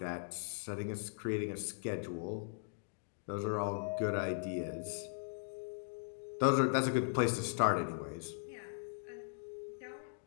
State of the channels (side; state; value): right; silent; digital silence